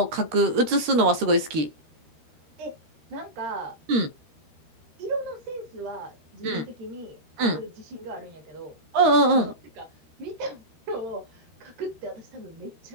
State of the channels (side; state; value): left; late; 13 ms